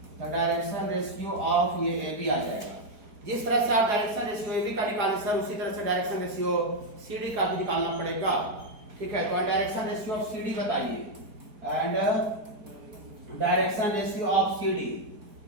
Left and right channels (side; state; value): left; late; 4.6 ms